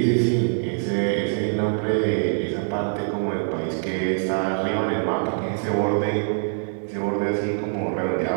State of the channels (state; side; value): silent; left; 63 dB below the other